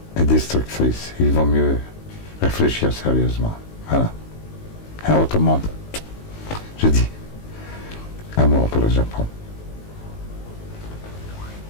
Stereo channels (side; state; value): right; late; 19 ms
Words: et destructrices. Il vaut mieux réfléchir sérieusement. Voilà. Et autrement, je dis amour pour le Japon.